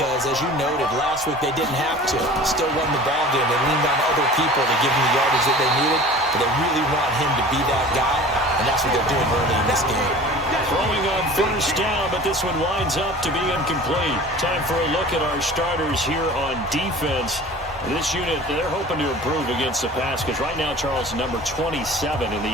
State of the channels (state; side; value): normal; both; correlation 0.42